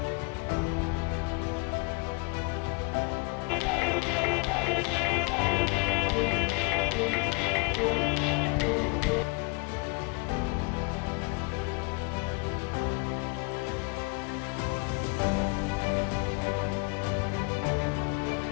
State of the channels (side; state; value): right; quieter; 30.4 dB